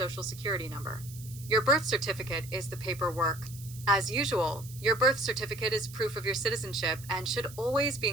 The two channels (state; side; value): noise; right; hiss, 17 dB below the sound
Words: security number. Your birth certificate is the paperwork. As usual, your birth certificate is proof of your citizenship and should always be